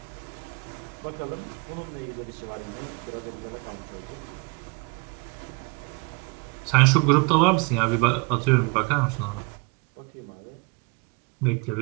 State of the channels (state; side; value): quieter; left; 29.6 dB